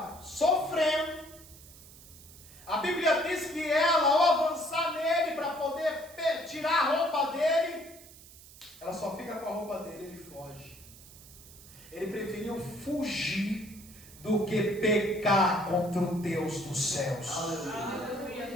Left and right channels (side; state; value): right; noise; hiss, 20 dB below the sound